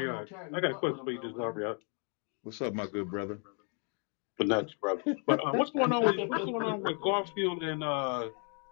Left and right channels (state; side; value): quieter; right; 39.6 dB